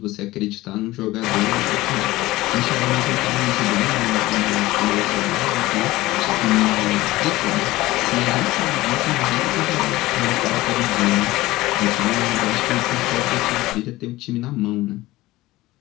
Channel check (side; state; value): right; quieter; 18.2 dB